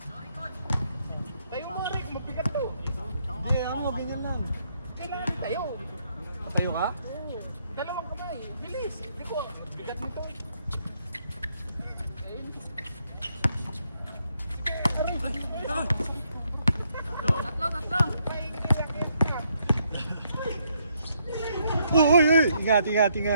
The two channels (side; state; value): both; inverted; correlation -0.74